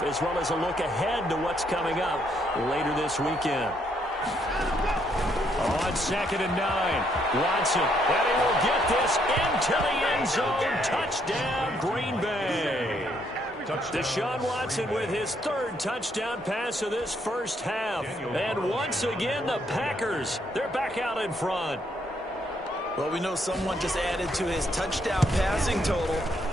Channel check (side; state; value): both; normal; correlation 0.72